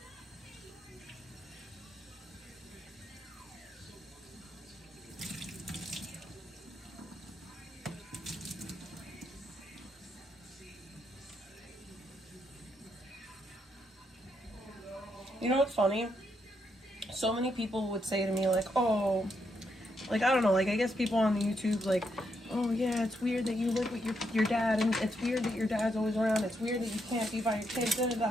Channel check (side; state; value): both; normal; correlation 0.79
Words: You know what's funny? So many people would say to me, like, oh, like, I don't know, like, I guess people on the YouTube, like, oh, yeah, it's weird that you live with your dad, and it's weird that your dad's always around, it's weird that you can't be by your kids, da, da,